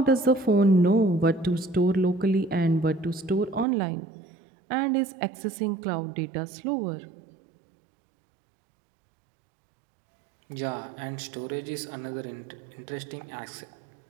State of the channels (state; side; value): drops out; left; at 3.7 s